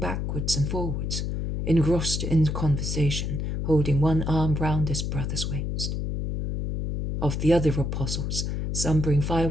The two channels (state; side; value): noise; left; hum, 2 dB below the sound